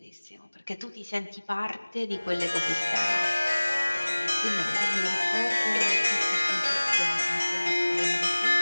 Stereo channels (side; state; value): both; inverted; correlation -1.00